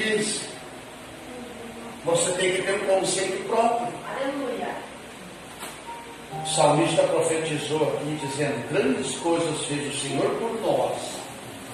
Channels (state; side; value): identical; both; correlation 1.00